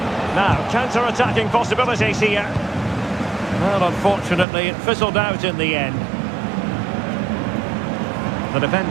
Now, counter-attacking possibilities here. Well, unfortunately, it fizzled out in the end. The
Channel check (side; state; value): left; drops out; at 4.5 s